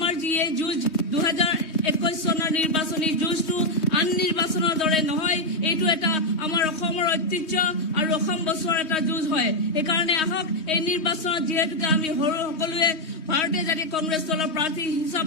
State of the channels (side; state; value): right; late; 3.2 ms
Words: যি এই যুঁজ 2021 চনৰ নিৰ্বাচনী যুঁজটো আন নিৰ্বাচনৰ দৰে নহয়, এইটো এটা আমাৰ অসমৰ ঐতিহ্য আৰু অসম বছৰৰ এটা যুঁজ হয়। সেইকাৰণে আহক এই নিৰ্বাচনত যিহেতুকে আমি সকলোৱে ভাৰতীয় জাতীয় কংগ্ৰেছ দলৰ প্ৰাৰ্থী